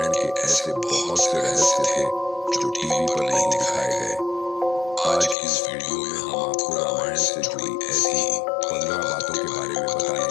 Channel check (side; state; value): right; drops out; at 5.4 s